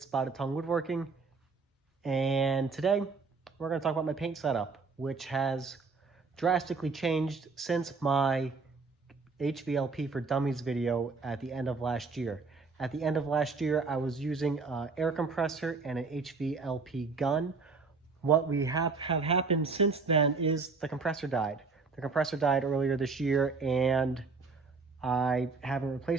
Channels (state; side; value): quieter; left; 4.4 dB